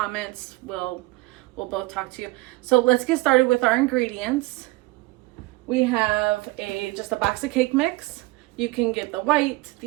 We'll both talk to you. So let's get started with our ingredients. We have just a box of cake mix. You can get the white,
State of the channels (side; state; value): left; quieter; 21.1 dB